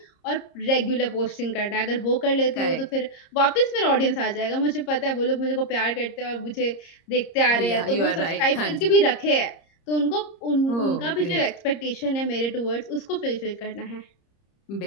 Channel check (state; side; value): late; right; 30 ms